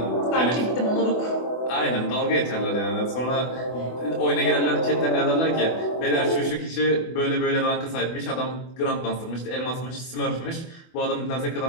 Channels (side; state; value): right; late; 24 ms